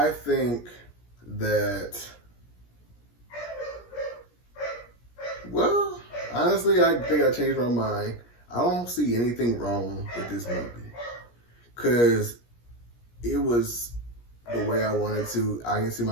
think that, well, honestly, I think I changed my mind. I don't see anything wrong with this movie because it was the way I wanted to. I can see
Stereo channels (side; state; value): right; late; 17 ms